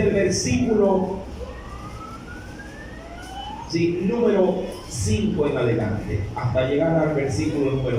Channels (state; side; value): identical; both; correlation 1.00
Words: el versículo número 5 en adelante, hasta llegar al versículo